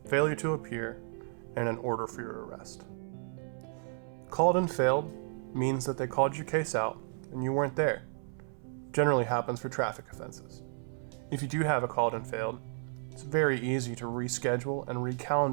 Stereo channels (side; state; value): left; silent; 56 dB below the other